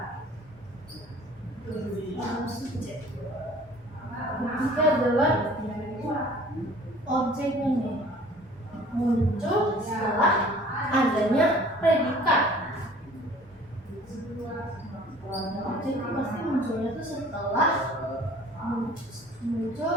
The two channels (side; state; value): both; normal; correlation 0.50